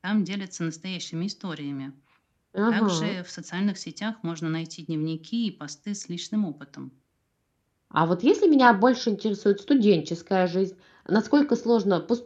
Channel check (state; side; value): identical; both; correlation 1.00